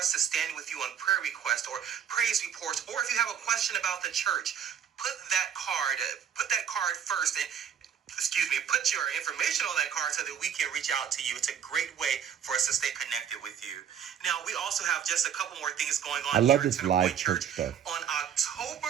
to stand with you on prayer requests or praise reports, or if you have a question about the church, put that card first, and put your information on that card so that we can reach out to you. It's a great way for us to stay connected with you. Now, we also have just a couple more things going on. I love here this at live Centrepoint church stuff. On October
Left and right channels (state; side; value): quieter; left; 8.5 dB